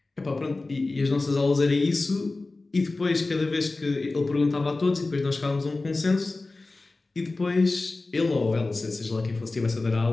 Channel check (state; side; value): quieter; right; 3.3 dB